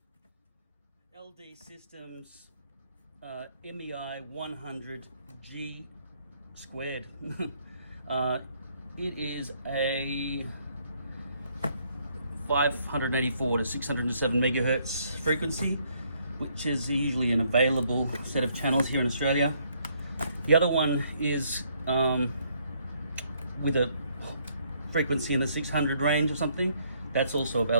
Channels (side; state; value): both; inverted; correlation -0.69